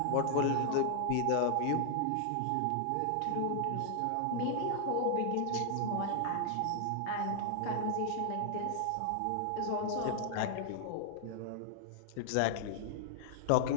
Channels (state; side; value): different; both; correlation -0.01